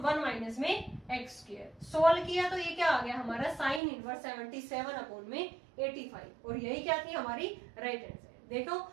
1 minus में x स्क्वायर। सोल्व किया तो ये क्या आ गया हमारा साइन इनवर्स 77 अपॉन में 85, और यही क्या थी हमारी राइट हैंड साइड। देखो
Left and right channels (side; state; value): left; drops out; at 3.8 s